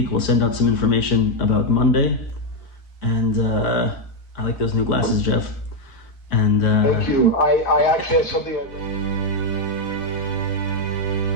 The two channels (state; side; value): late; right; 4.6 ms